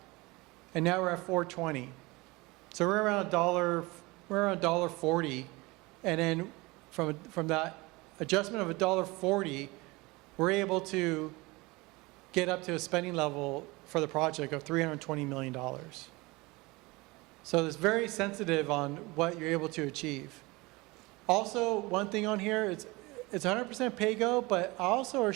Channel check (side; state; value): left; quieter; 23.3 dB